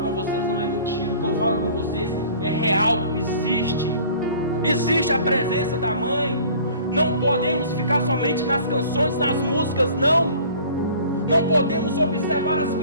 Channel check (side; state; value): both; inverted; correlation -0.48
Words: vocês não é mentira. O que eu falo com vocês é real. Existe a presença da mãe. Não podemos ficar somente nas canções, nas músicas, não. Não podemos observar as